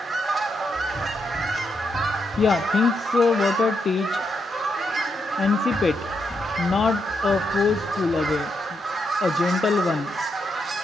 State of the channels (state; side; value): normal; both; correlation 0.81